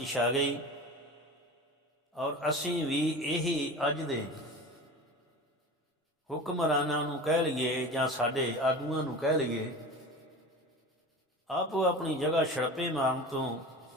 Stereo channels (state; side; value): normal; both; correlation 0.33